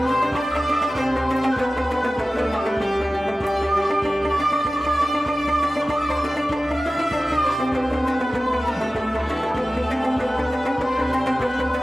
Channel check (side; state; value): both; normal; correlation 0.96